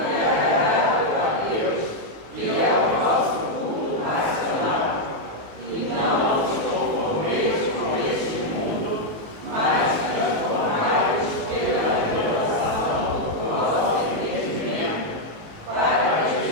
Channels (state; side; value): late; left; 19 ms